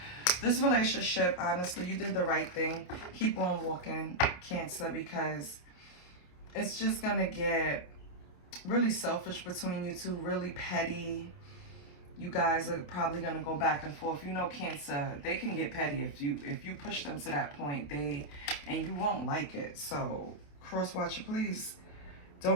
This relationship, honestly, you did the right thing. Keep on walking, Cancer, because it's just going to get really selfish between you two, really petty. You guys are probably going to go back and forth. You know, Cancer, they can get petty if you push them to that point, and you won't like it. So, cross watcher, please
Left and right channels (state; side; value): late; right; 28 ms